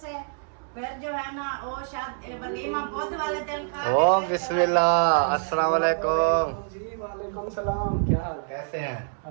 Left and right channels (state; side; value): silent; left; digital silence